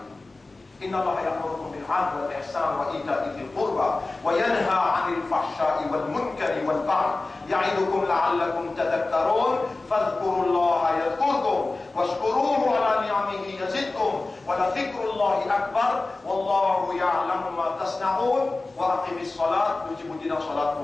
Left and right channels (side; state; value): right; quieter; 3.3 dB